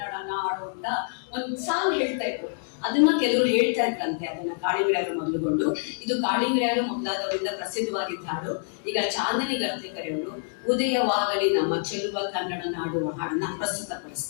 ನಾಡು ಅಂತ ಒಂದು ಸಾಂಗ್ ಹೇಳ್ತಾ ಇದ್ರು. ಅದನ್ನ ಕೆಲವರು ಹೇಳ್ತಾ ಇದ್ರಂತೆ, ಅದನ್ನ ಕಾಳಿಂಗರಾಯರು ಮೊದಲುಗೊಂಡು. ಇದು ಕಾಳಿಂಗರಾಯರು ಮೊದಲಾದವರಿಂದ ಪ್ರಸಿದ್ಧವಾಗಿದ್ದ ಹಾಡು. ಈಗ ಚಾಂದಿನಿ ಗರ್ತೆಕರೆಯವರು ಉದಯವಾಗಲಿ ನಮ್ಮ ಚೆಲುವ ಕನ್ನಡ ನಾಡು ಹಾಡನ್ನ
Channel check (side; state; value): right; silent; 60 dB below the other